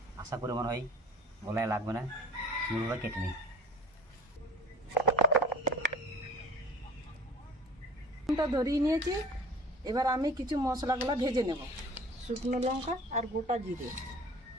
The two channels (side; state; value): both; normal; correlation 0.44